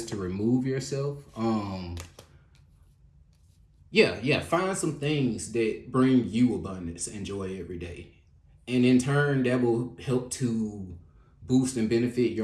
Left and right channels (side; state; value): both; identical; correlation 1.00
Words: to remove yourself. Yeah, find some things that bring you abundance and joy every day. And in turn, that will help to boost and benefit